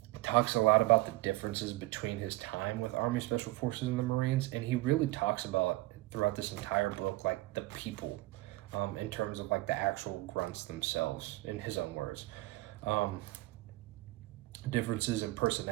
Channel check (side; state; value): left; quieter; 19.7 dB